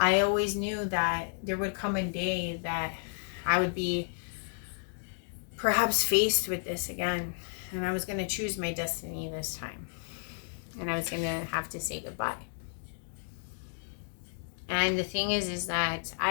always knew that there would come a day that I would be perhaps faced with this again. And I was going to choose my destiny this time. And I was going to have to say goodbye. And the thing is that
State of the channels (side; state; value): right; silent; digital silence